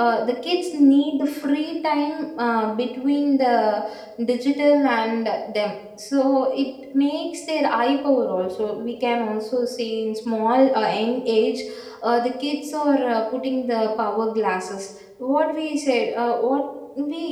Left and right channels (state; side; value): identical; both; correlation 1.00